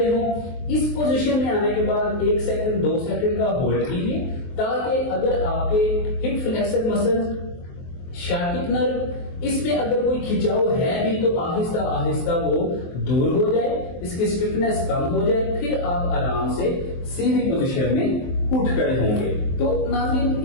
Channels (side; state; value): right; late; 23 ms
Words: ہوں. اس پوزیشن میں آنے کے بعد 1 سیکنڈ 2 سیکنڈ کا ہولڈ کیجیے تاکہ اگر آپ کے ہپ فلیکسر مسلز، شاٹک نرو، اس میں اگر کوئی کھچاؤ ہے بھی تو آہستہ آہستہ وہ دور ہو جائے، اس کی اسٹفنس کم ہو جائے، پھر آپ آرام سے سیدھی پوزیشن میں اٹھ کھڑے ہوں گے. تو ناظرین